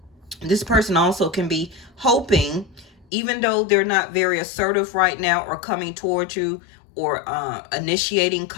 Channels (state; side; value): drops out; right; at 3.1 s